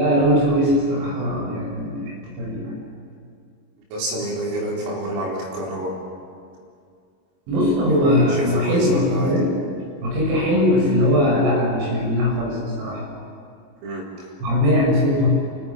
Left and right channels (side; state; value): left; late; 22 ms